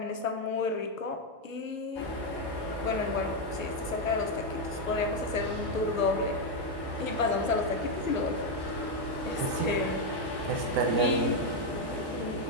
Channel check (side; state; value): right; late; 1.1 ms